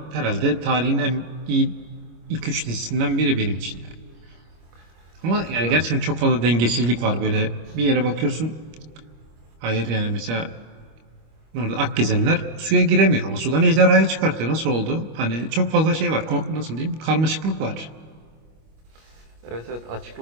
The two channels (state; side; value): late; left; 25 ms